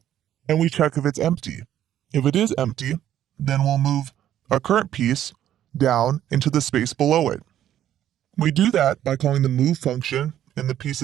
and we check if it's empty. If it is empty, then we'll move our current piece down into the space below it. We do that by calling the move function in the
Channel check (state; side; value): quieter; left; 11.4 dB